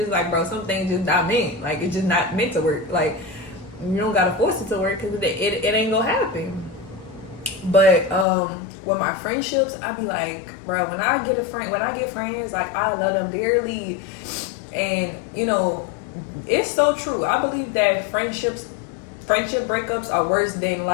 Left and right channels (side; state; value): right; drops out; at 8.2 s